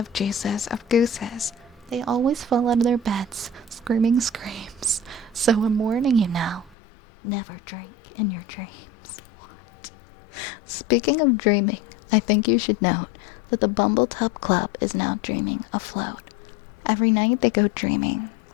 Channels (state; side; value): drops out; right; at 6.8 s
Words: juices of gooses, they always fall out of their beds, screaming screams. So I'm warning you now, never drink in your dreams. What? Speaking of dreaming, I think you should note that the Bumbletub Club is now dreaming afloat. Every night they go dreaming